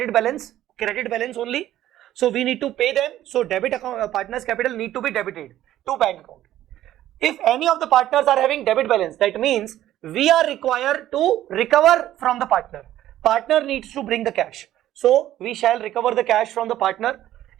balance only. So we need to pay them. So debit account, partners capital need to be debited to bank account. If any of the partners are having debit balance, that means we are required to recover from the partner. Partner needs to bring the cash. So we shall recover the cash from the partner.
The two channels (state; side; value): quieter; left; 13.1 dB